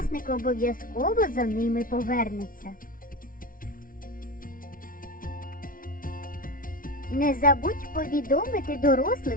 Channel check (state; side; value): late; right; 0.40 ms